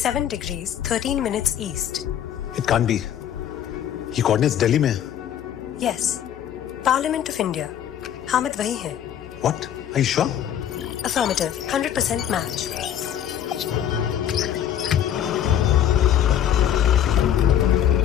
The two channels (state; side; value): quieter; right; 10.0 dB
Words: degrees 13 minutes east. It can't be. ये coordinates दिल्ली में है। Yes, Parliament of India. Hamid वही है। What? Are you sure? Affirmative, 100% match.